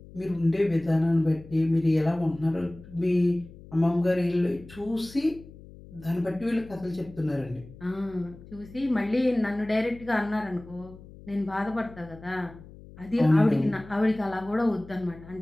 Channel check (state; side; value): noise; left; hum, 19 dB below the sound